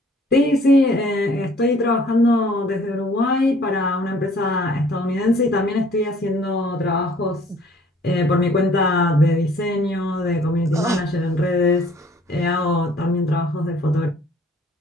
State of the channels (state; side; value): normal; both; correlation 0.56